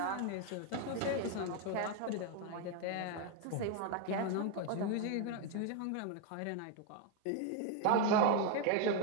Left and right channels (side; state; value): both; different; correlation 0.01